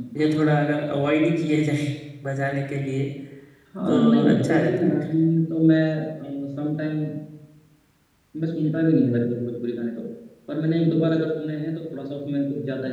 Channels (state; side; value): identical; both; correlation 1.00